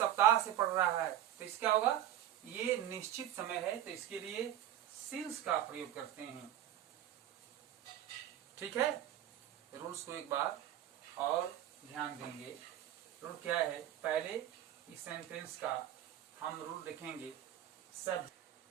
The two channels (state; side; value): quieter; left; 11.9 dB